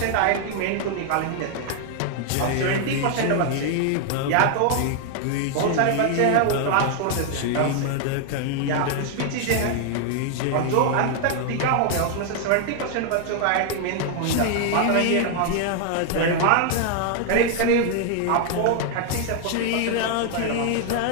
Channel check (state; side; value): different; both; correlation 0.00